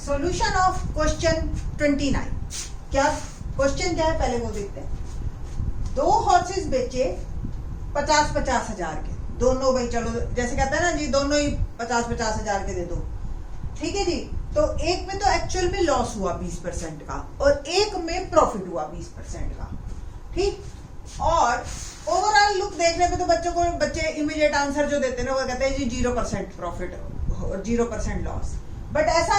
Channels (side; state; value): both; identical; correlation 1.00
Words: Solution of question 29। क्या question क्या है पहले वो देखते हैं। 2 हॉर्सेस बेचे 50-50 हजार के, दोनों भाई चलो जैसे कहते हैं ना जी, दोनों ही 50-50 हजार के दे दो, ठीक है जी। तो एक में तो एक्चुअल में लॉस हुआ 20% का और एक में प्रॉफिट हुआ 20% का, ठीक। और ओवरऑल लुक देखने पे तो बच्चे इमीडिएट आंसर जो देते हैं ना वो कहते हैं जी 0% प्रॉफिट और 0% लॉस, बट ऐसा